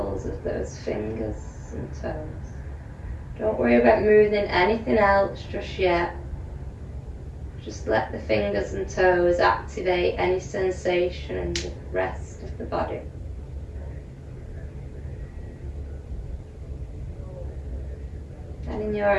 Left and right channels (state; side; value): identical; both; correlation 1.00